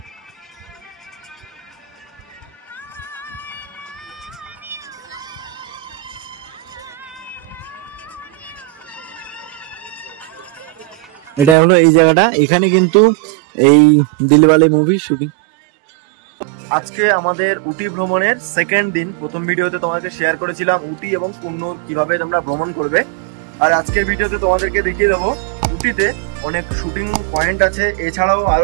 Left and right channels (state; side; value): drops out; left; at 11.6 s